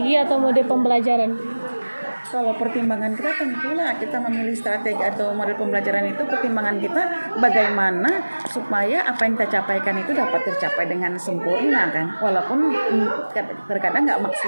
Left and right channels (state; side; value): inverted; both; correlation -1.00